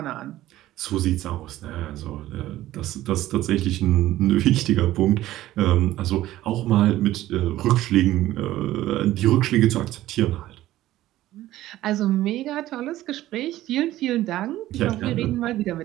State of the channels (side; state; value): left; quieter; 14.9 dB